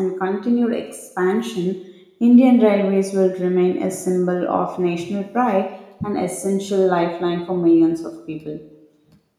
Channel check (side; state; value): both; identical; correlation 1.00